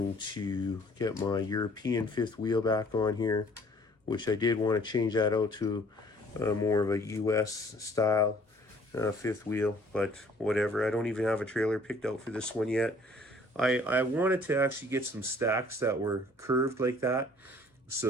to get my European fifth wheel back on here, which I did want to change that out to more of a US style fifth wheel, but whatever. I don't even have a trailer picked out for this one yet. I wanted to actually get some stacks that were curved like that.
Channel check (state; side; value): normal; both; correlation 0.56